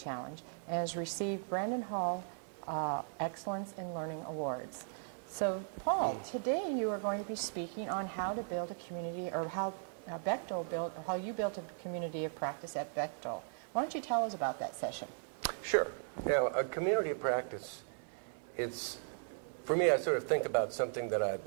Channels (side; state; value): left; silent; 53 dB below the other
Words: and has received Brandon Hall Excellence in Learning Awards. So, Paul, today you are going to be speaking on how to build a community, or how Bechtel built, or how you built a community of practice at Bechtel. Why don't you tell us about that session? Sure. Now, a community of practice, for me, I sort of think about something that